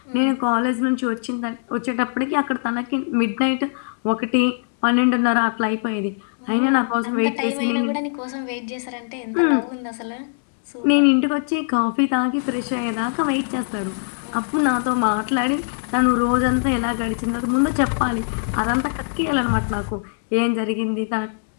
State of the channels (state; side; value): silent; right; digital silence